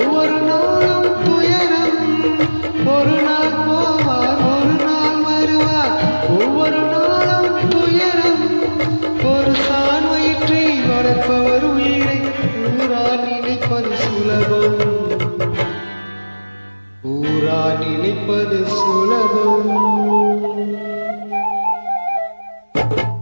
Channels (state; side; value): inverted; both; correlation -1.00